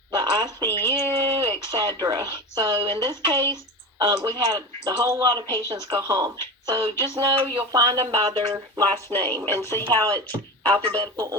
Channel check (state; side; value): normal; both; correlation 0.27